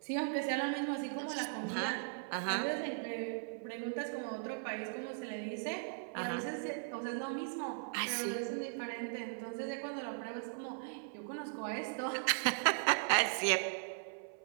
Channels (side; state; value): left; silent; 52 dB below the other